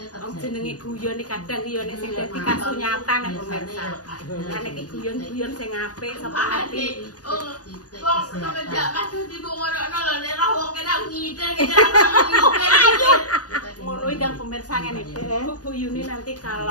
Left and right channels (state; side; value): late; right; 0.68 ms